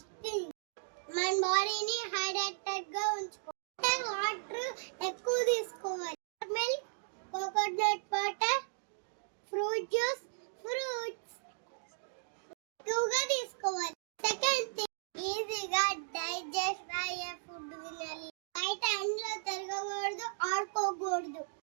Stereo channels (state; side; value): silent; left; digital silence